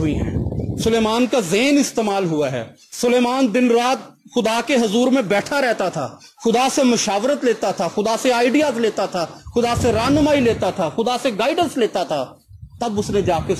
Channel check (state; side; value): identical; both; correlation 1.00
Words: ہیں, سلیمان کا ذہن استعمال ہوا ہے. سلیمان دن رات خدا کے حضور میں بیٹھا رہتا تھا, خدا سے مشاورت لیتا تھا, خدا سے آئیڈیاز لیتا تھا, خدا سے رہنمائی لیتا تھا, خدا سے گائیڈنس لیتا تھا. تب اس نے جا کے